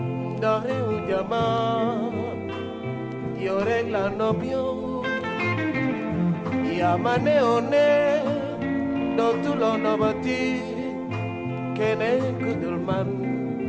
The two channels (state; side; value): identical; both; correlation 1.00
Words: ndax réew jama yow rek la nopp yow yaa ma neewoon ne dootuloo nobati keneen ku dul man